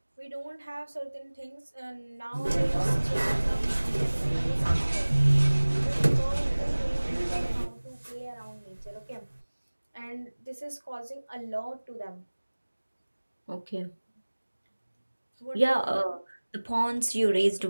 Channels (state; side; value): inverted; both; correlation -1.00